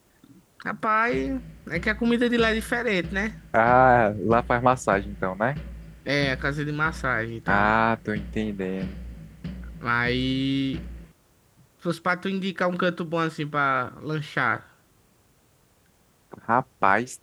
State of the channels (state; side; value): identical; both; correlation 1.00